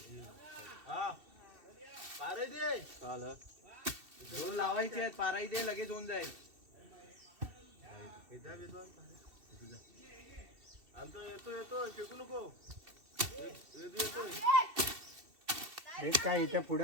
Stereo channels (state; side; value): late; left; 2.7 ms